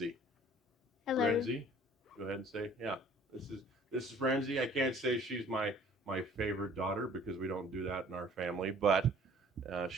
Hello. Renzi, go ahead and say, yeah, this is Renzi. I can't say she's my favorite daughter because we don't do that in our family, but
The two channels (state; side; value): normal; both; correlation 0.53